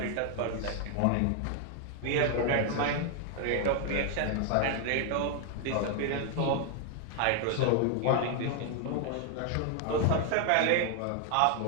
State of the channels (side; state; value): both; different; correlation 0.00